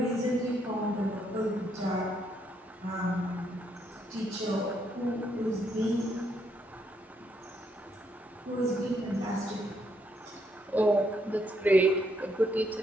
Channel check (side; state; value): both; normal; correlation 0.74